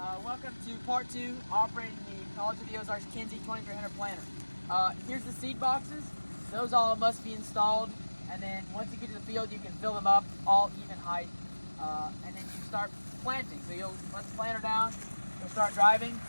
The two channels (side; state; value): both; inverted; correlation -1.00